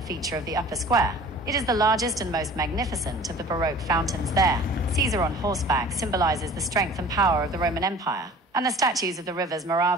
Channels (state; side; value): normal; both; correlation 0.45